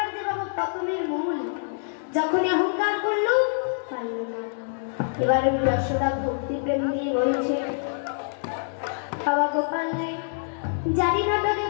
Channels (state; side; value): silent; right; digital silence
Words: যে বাবা পতনের মূল, যখনই অহংকার করলো পারল না। এবারে যশোদা ভক্তি প্রেম দিয়ে বলছে, বাবা গোপাল রে, জানি না তোকে